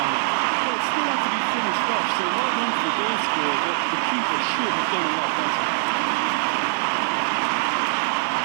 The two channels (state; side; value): silent; left; 59 dB below the other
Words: Well, it still had to be finished off, so well done for the goal scorer, but the keeper should have done a lot better.